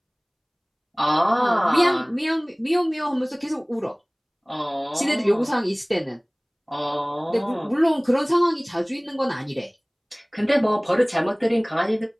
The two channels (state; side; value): identical; both; correlation 1.00